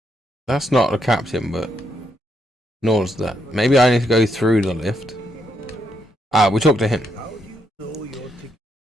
that's not the captain, but nor's that. Maybe I need to go through the lift. Ah, we talked to him. How do you know your ticket?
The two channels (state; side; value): normal; both; correlation 0.78